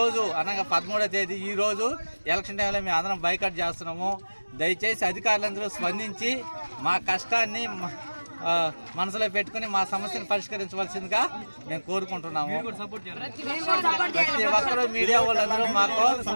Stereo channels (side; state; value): both; inverted; correlation -1.00